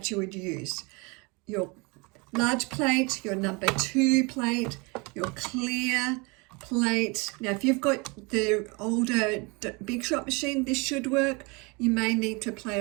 you would use. Your large plate, your number 2 plate, your clear plate. Now if you've got the older Big Shot machine, this should work. You may need to play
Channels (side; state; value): left; quieter; 28.7 dB